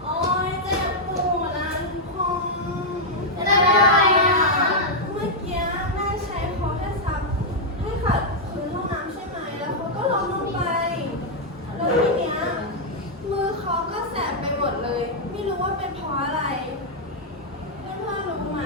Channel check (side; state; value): both; normal; correlation -0.03